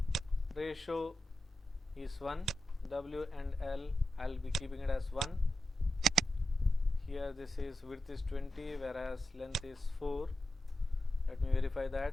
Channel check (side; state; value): both; normal; correlation 0.90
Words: ratio is 1, W and L I will be keeping it as 1. here this is width is 20 whereas length is 4. Let me verify